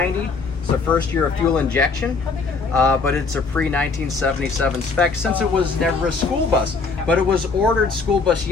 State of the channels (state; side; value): quieter; right; 4.4 dB